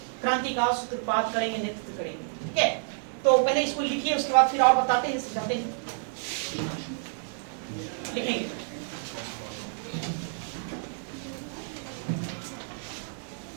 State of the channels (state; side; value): silent; left; 59 dB below the other